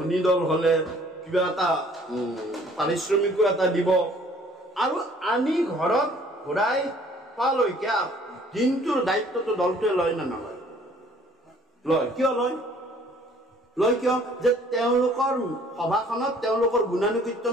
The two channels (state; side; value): normal; both; correlation 0.57